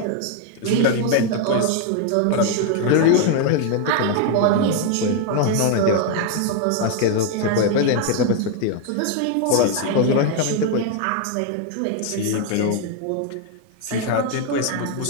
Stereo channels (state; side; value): different; both; correlation 0.01